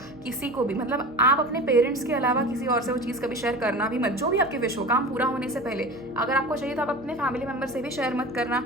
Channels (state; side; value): noise; right; hum, 22 dB below the sound